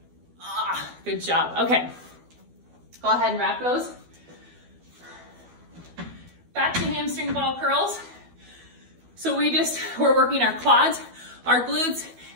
Good job. Okay. Go ahead and wrap those. Back to hamstring ball curls. So we're working our quads, our glutes,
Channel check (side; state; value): left; late; 12 ms